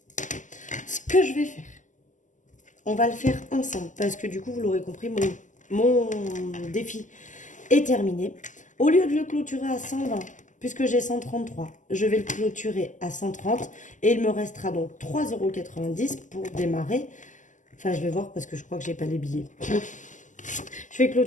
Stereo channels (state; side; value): late; right; 0.37 ms